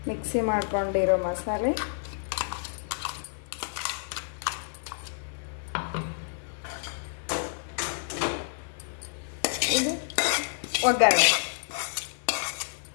ಮಿಕ್ಸಿ ಮಾಡ್ಕೊಂಡಿರೋ ಮಸಾಲೆ, ಇದು ಒಗ್ಗರಣೆ.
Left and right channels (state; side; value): silent; right; 56 dB below the other